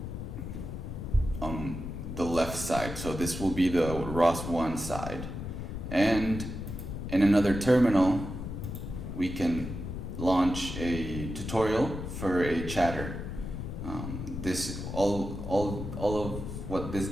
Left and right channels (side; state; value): left; noise; rumble, 6 dB below the sound